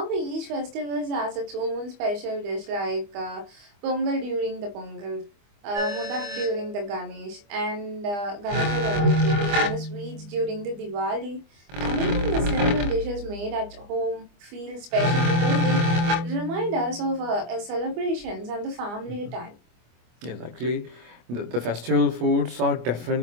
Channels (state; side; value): late; left; 25 ms